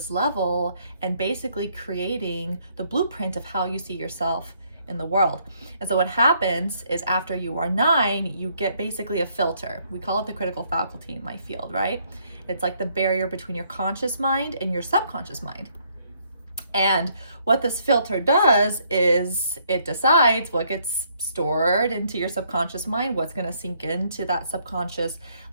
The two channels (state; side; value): inverted; both; correlation -0.68